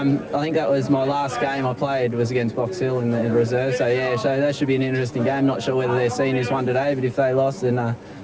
I think that was my last game I played was against Box Hill in the reserve. So yeah, so that should be an interesting game. Not sure whether their seniors won today, but if they lost, then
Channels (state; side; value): identical; both; correlation 1.00